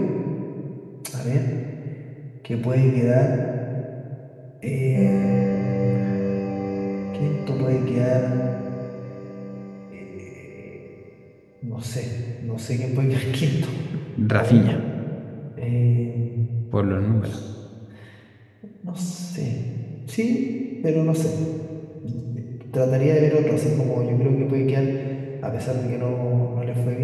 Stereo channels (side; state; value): both; identical; correlation 1.00